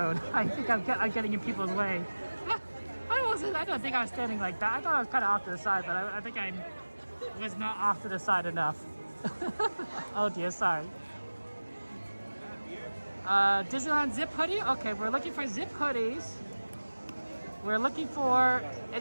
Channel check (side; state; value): both; inverted; correlation -1.00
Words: I think I'm getting in people's way. I don't think I was standing like that. I thought I was kind of off to the side, but I think I was not off to the side enough. Oh dear, sorry. Disneyland zip hoodie? Okay, we're looking for zip hoodies. We're looking for